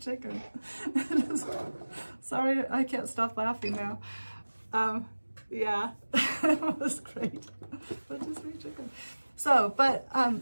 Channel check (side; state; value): both; inverted; correlation -1.00